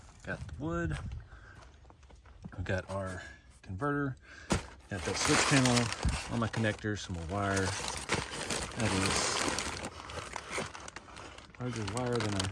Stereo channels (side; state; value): both; identical; correlation 1.00